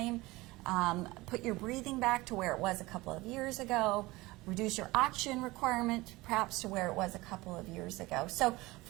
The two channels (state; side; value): quieter; left; 20.8 dB